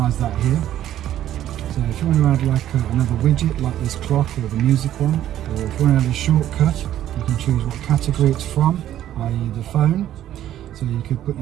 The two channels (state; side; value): quieter; left; 12.0 dB